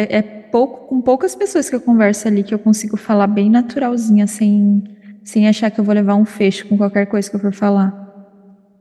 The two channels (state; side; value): identical; both; correlation 1.00